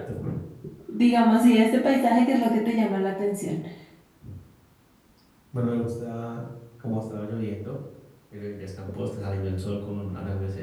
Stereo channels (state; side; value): identical; both; correlation 1.00